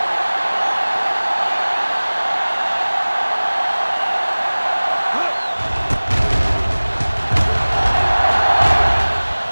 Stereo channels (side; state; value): both; inverted; correlation -1.00